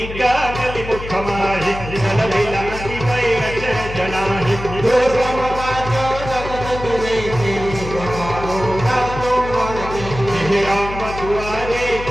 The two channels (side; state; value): left; noise; hum, 9 dB below the sound